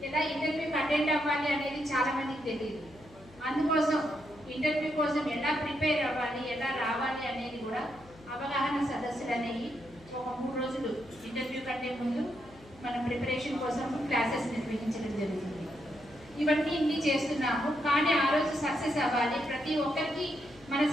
ఎలా ఇంటర్వ్యూకి అటెండ్ అవ్వాలి అనేది చాలా మందికి తెలియదు. అందుకోసం ఇంటర్వ్యూ కోసం ఎలా ప్రిపేర్ అవ్వాలి, ఎలా రావాలి అనేది కూడా అవగాహన సదస్సులు అనేవి ఒక 3 రోజులు ఇంటర్వ్యూ కంటే ముందు మనం ప్రిపరేషన్ కోసం క్లాసెస్ నిర్వహించడం జరుగుతుంది. ఇవన్నీ ఇన్ని చేస్తున్నాము, కానీ ఆ రోజు సక్సెస్ అవ్వాలి, ప్రతి ఒక్కరికి మన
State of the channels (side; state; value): left; noise; hum, 23 dB below the sound